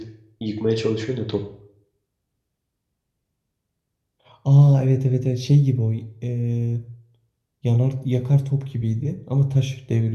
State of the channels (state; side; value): identical; both; correlation 1.00